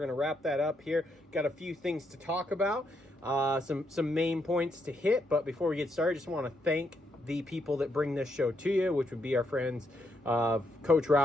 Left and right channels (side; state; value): both; normal; correlation 0.77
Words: wrap that up here. Got a few things to talk about, some main points to hit, but before we get started, I just want to thank the people that bring this show to you, which would be our friends Coach